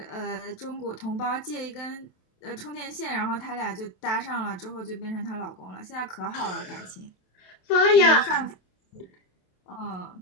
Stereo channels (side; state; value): right; late; 27 ms